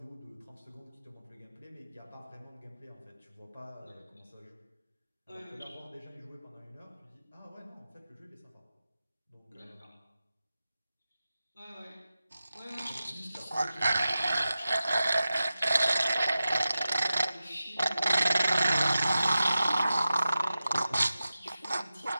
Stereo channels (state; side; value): inverted; both; correlation -0.93